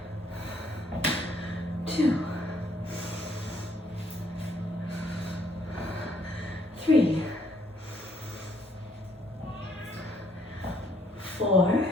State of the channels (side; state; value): both; normal; correlation 0.68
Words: 2, 3, 4,